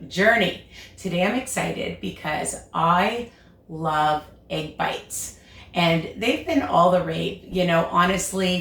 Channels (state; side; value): identical; both; correlation 1.00